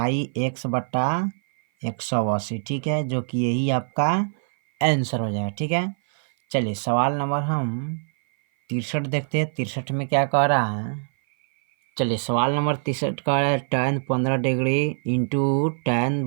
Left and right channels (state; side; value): silent; left; 57 dB below the other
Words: एक्स बटा 180। ठीक है, जो कि यही आपका आंसर हो जाएगा। ठीक है, चलिए सवाल नंबर हम 63 देखते हैं। 63 में क्या कह रहा है, चलिए सवाल नंबर 63 कह रहा है tan 15 degree into tan